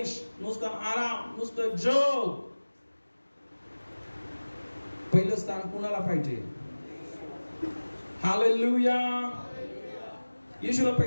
नुसतं आराम, नुसतं जग. पहिलं स्थान कुणाला पाहिजे? हालेलुया. येशूला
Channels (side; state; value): both; inverted; correlation -1.00